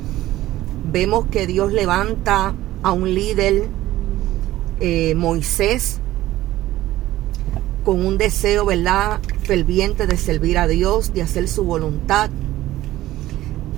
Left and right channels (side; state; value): left; quieter; 15.4 dB